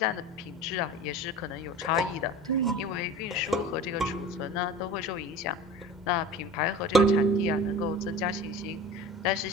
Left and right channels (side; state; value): both; normal; correlation 0.38